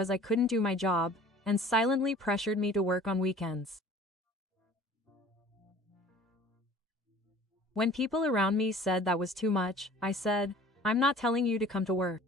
I couldn't do my job, and silently pressured me to work on weekends. When people around me said that was too much, I said, I'm not telling you to come to work.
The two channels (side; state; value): both; normal; correlation 0.48